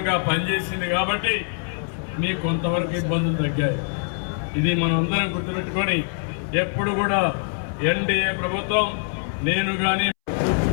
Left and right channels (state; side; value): silent; right; 63 dB below the other